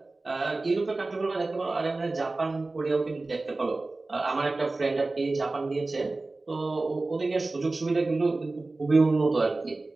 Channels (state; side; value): quieter; left; 3.3 dB